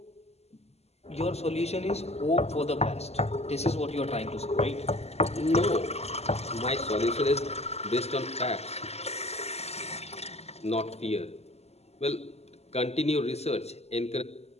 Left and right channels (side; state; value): right; late; 0.30 ms